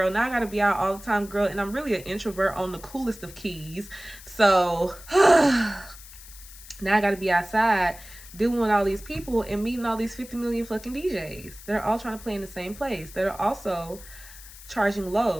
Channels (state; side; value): noise; left; hiss, 18 dB below the sound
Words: Now I gotta be out all the time, girl. And I'm really an introvert on the coolest of keys. So now I gotta be outside dealing with all these people and meeting all these 50 million fucking DJs that are all trying to play in the same place, that are also charging